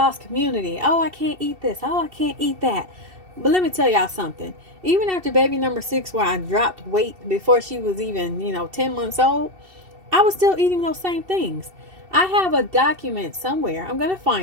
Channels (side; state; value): left; late; 2.7 ms